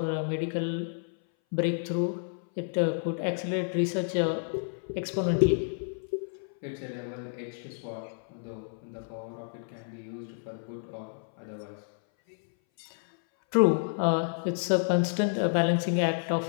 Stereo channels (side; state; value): right; silent; 58 dB below the other